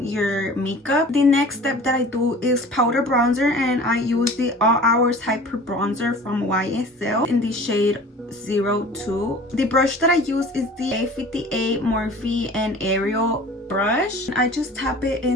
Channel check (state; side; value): normal; both; correlation 0.43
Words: your makeup. The next step that I do is powder bronzer, and I use the All Hours Hyper Bronzer from YSL in the shade 02. The brush that I use is the A58 Morphe and Ariel brush. I just tap it